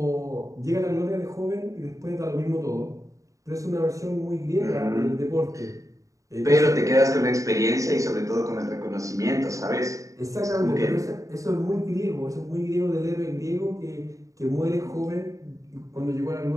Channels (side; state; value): left; late; 0.16 ms